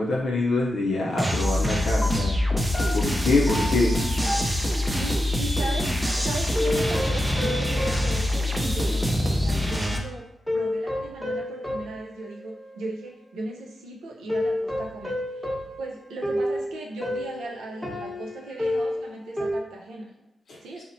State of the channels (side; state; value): both; normal; correlation 0.89